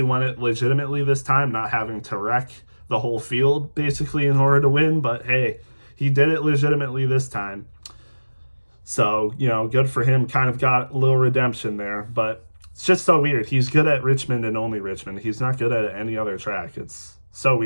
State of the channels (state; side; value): inverted; both; correlation -1.00